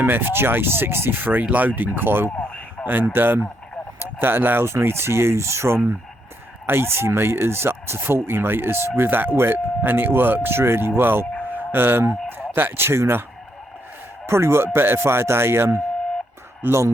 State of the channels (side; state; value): both; normal; correlation 0.76